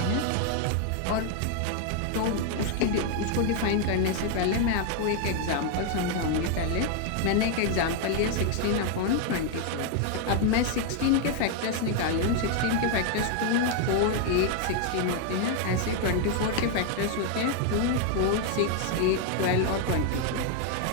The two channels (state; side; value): different; both; correlation 0.00